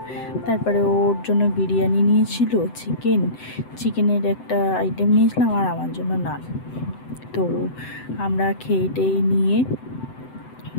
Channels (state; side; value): late; right; 7.9 ms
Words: তারপরে ওর জন্য বিরিয়ানি নিয়েছিল, চিকেনের একটা আইটেম নিয়েছিলাম, আর আমার জন্য নান। তো আমরা খেয়ে নিয়ে